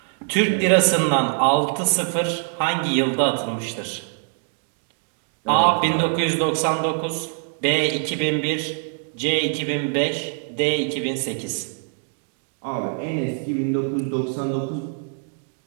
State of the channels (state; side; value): silent; left; 56 dB below the other